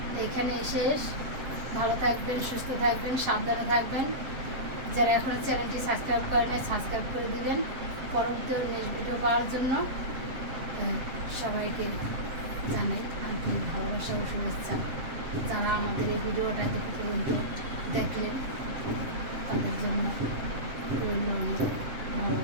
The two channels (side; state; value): left; late; 7.7 ms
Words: এখানে শেষ ভালো থাকবেন সুস্থ থাকবেন সাবধানে থাকবেন যারা এখন চ্যানেলটি সাবস্ক্রাইব করেন সাবস্ক্রাইব করে দিবেন পরবর্তী নেক্সট ভিডিও পাওয়ার জন্য সবাইকে জানাই আন্তরিক ভালোবাসা ও শুভেচ্ছা যারা আমাদের এই ভিডিওটা এত পর্যন্ত দেখলেন তাদের জন্য রইল অনেক